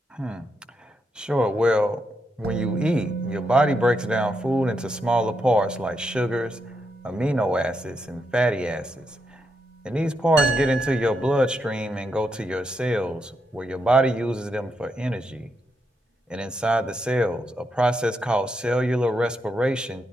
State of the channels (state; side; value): normal; both; correlation 0.82